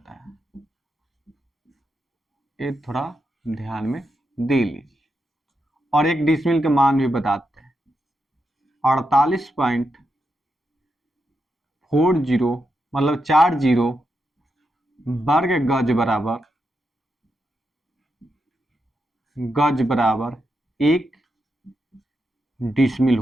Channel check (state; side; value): normal; both; correlation 0.85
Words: है। ये थोड़ा ध्यान में दे लीजिए। और एक डिसमिल के मान भी बताते हैं, 48.40 मतलब 40 वर्ग गज बराबर एक डिसमिल